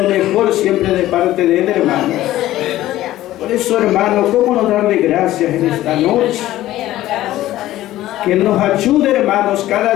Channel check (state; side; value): quieter; right; 14.8 dB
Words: mejor siempre de parte de Él, hermanos. Por eso, hermanos, ¿cómo no darle gracias en esta noche? Que Él nos ayude, hermanos,